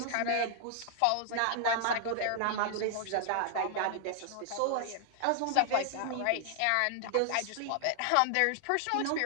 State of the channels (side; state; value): both; different; correlation -0.01